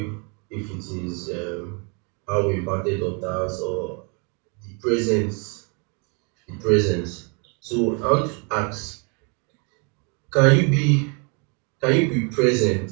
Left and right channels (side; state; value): left; quieter; 35.1 dB